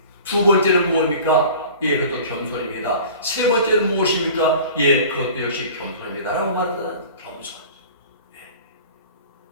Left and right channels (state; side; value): inverted; both; correlation -0.42